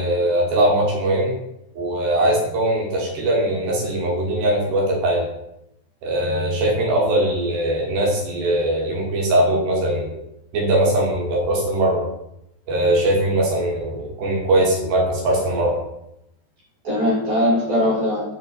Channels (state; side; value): late; left; 14 ms